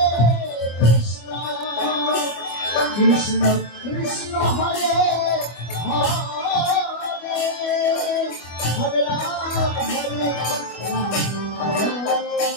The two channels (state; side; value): late; right; 25 ms